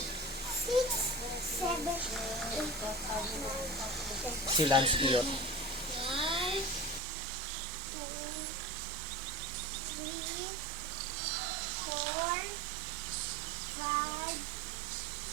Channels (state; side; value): drops out; left; at 7.0 s